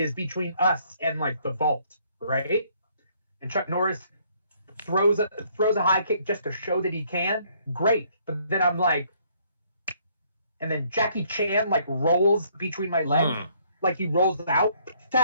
between us and like the vault, right? And Chuck Norris throws a high kick just to show that he can. Great, but then I'm like, and then Jackie Chan like rolls between my legs, like he rolls out,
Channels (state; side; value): inverted; both; correlation -0.66